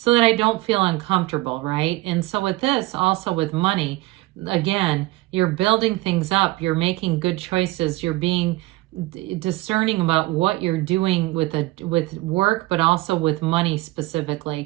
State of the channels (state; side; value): quieter; left; 19.6 dB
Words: that I don't feel uncomfortable, right? And so with this, also with money, again, you're building things up, you're making good choices, you're being discerning about what you're doing with work, but also with money